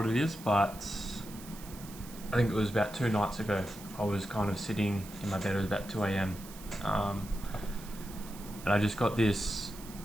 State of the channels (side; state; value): right; noise; hiss, 16 dB below the sound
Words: it is, but I think it was about 2 nights ago. I was kind of sitting in my bed. It was about 2 a.m. And I just got this